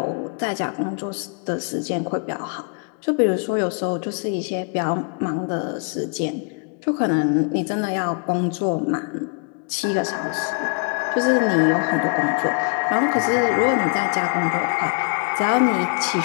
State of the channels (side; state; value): right; quieter; 37.8 dB